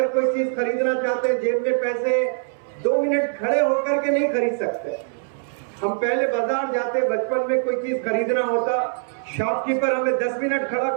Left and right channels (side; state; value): left; silent; 60 dB below the other